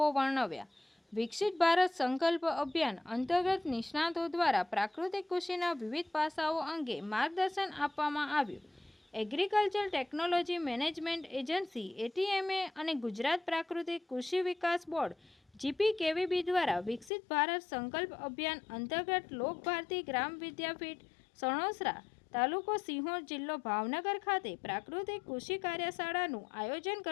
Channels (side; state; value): right; drops out; at 17.1 s